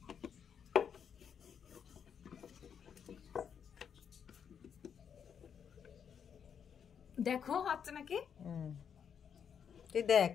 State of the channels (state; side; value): quieter; right; 7.6 dB